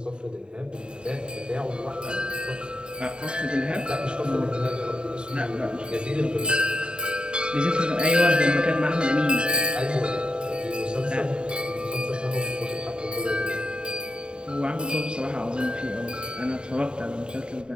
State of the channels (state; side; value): late; left; 0.050 ms